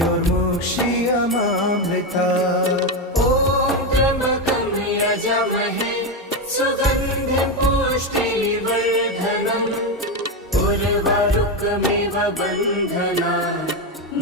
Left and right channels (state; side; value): normal; both; correlation 0.11